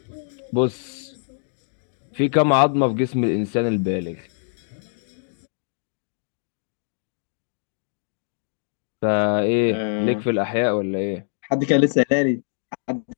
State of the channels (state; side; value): silent; right; digital silence